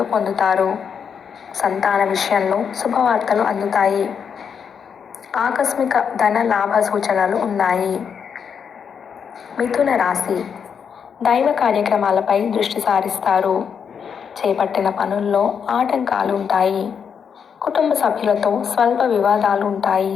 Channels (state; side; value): quieter; right; 7.0 dB